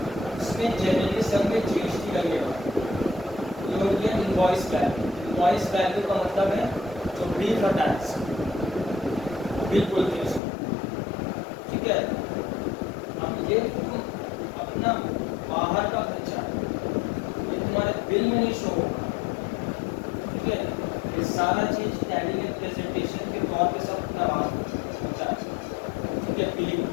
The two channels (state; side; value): drops out; right; at 10.4 s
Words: उसमें जनरली सब में जीएसटी लगेगा। ये हो गया इनवॉइस वैल्यू। इनवॉइस वैल्यू का मतलब है जो बिल का टैक्स, बिल बोलते हैं उसको, ठीक है। अब ये तुम अपना बाहर का खर्चा ये तुम्हारे बिल में नहीं शो होगा, ठीक है। ये सारा चीज टैली में प्रेजेंटेशन के तौर पे सब करवा होता है, ठीक है। बिलिंग,